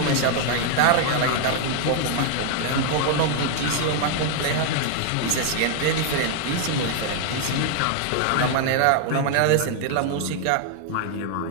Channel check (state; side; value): different; both; correlation 0.00